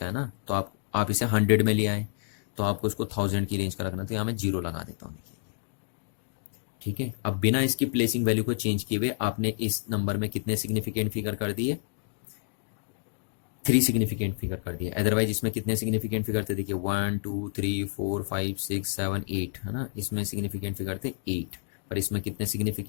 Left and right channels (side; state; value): right; silent; 59 dB below the other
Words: है ना, तो आप इसे 100 में ले आए, तो आपको इसको 1000 की रेंज का रखना, तो यहाँ मैं 0 लगा देता हूँ, देखिए। ठीक है, अब बिना इसकी प्लेसिंग वैल्यू को चेंज किए हुए आपने इस नंबर में कितने सिग्निफिकेंट फिगर कर दिए, 3 सिग्निफिकेंट फिगर कर दिए। अदरवाइज इसमें कितने सिग्निफिकेंट फिगर थे, देखिए 1 2 3 4 5 6 7 8, है ना, इसमें सिग्निफिकेंट फिगर थे 8, पर इसमें कितने